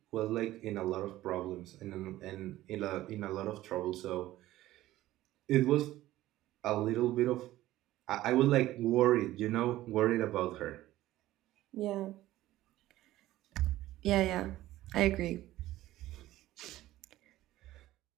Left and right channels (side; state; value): left; quieter; 15.5 dB